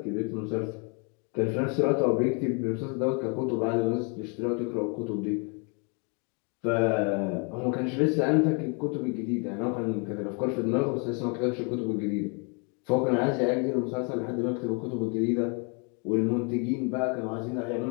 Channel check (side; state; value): right; quieter; 35.9 dB